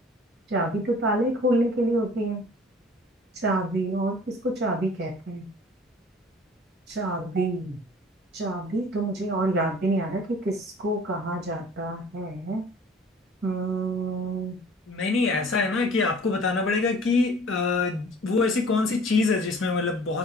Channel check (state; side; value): normal; both; correlation 0.48